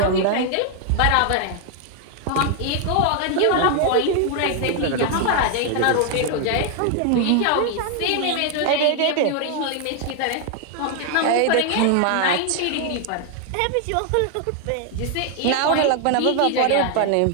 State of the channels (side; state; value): both; different; correlation 0.00